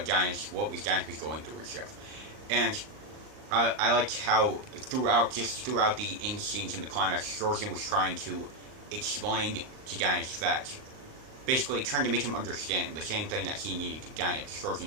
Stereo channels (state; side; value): late; left; 39 ms